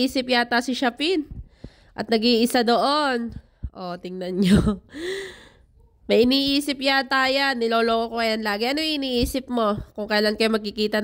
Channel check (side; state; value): both; identical; correlation 1.00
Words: yata si Shapin. At nag-iisa doon. Tingnan nyo. May iniisip yata yan. Niloloko ko yan lagi. Ano yung iniisip mo? Kung kailan kayo magkikita